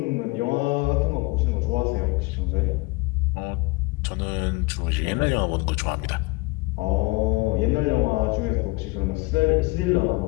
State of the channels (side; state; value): right; quieter; 24.2 dB